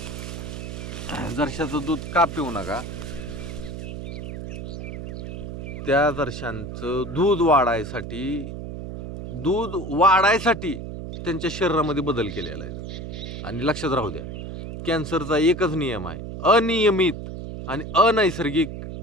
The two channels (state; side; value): noise; right; hum, 8 dB below the sound